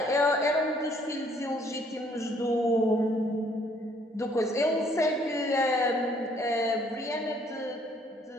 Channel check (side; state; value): both; normal; correlation 0.64